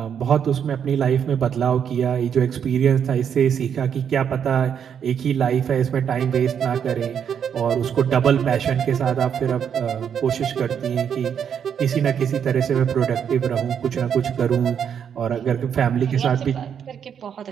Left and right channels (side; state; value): left; quieter; 8.0 dB